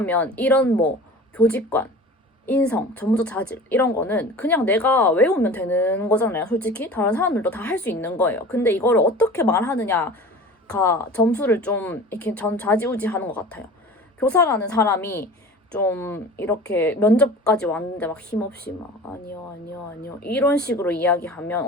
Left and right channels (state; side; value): normal; both; correlation 0.39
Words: 이런 뭐 교직관, 인성, 전문적 자질 이런 거는 그냥 내가 외우면 되는 거잖아요. 솔직히 다른 사람들도 다 할 수 있는 거예요. 근데 이거를 어떻게 말하느냐가 점수를 좀 이렇게 전 좌지우지하는 것 같아요. 교사라는 사람이 좀 이렇게 면접까지 왔는데 막 힘없이 막 아니요 이런 식으로 이야기하면